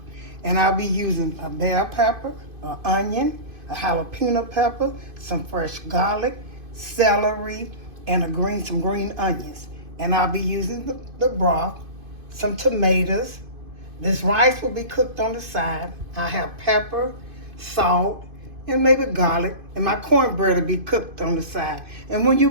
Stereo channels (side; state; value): left; late; 2.5 ms